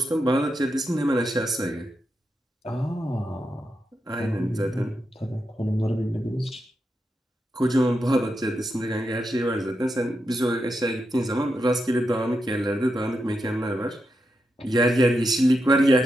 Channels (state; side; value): normal; both; correlation 0.86